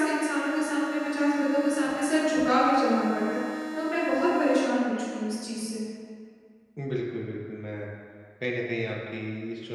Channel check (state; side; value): identical; both; correlation 1.00